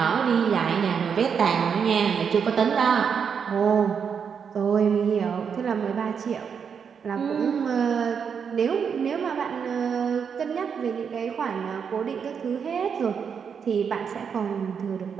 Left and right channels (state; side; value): quieter; left; 6.8 dB